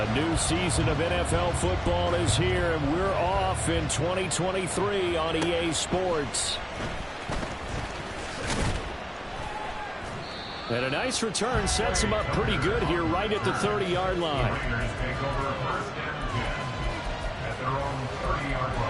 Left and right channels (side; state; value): both; identical; correlation 1.00